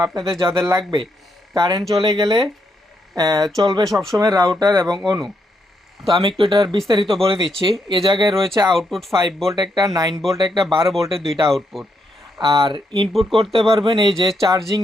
আপনাদের যাদের লাগবে, কারেন্ট চলে গেলে চলবে সবসময় রাউটার এবং অনু। তো আমি একটু এটার বিস্তারিত বলে দিচ্ছি। এ জায়গায় রয়েছে আউটপুট 5 ভোল্ট একটা, 9 ভোল্ট একটা, 12 ভোল্টের দুইটা আউটপুট। আর ইনপুট করতে পারবেন এই যে চার্জিং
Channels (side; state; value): both; normal; correlation 0.79